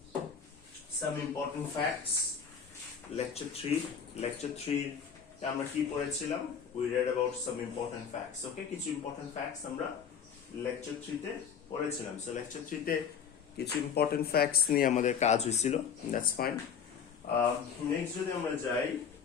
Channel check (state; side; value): quieter; right; 7.0 dB